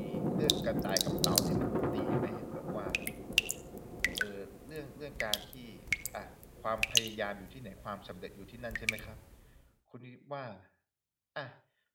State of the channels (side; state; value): both; identical; correlation 1.00